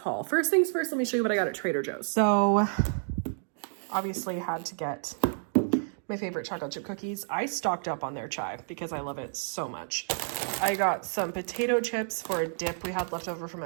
First things first, let me show you what I got at Trader Joe's. So, obviously had to get my favorite chocolate chip cookies. I stocked up on their chai because I love it so much. I got some potato chips for a dip we had left over from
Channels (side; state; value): left; silent; digital silence